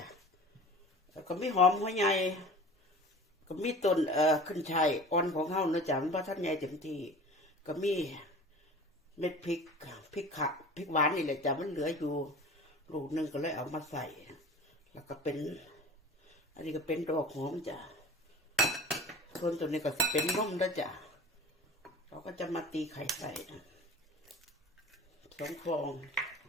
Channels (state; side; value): normal; both; correlation 0.40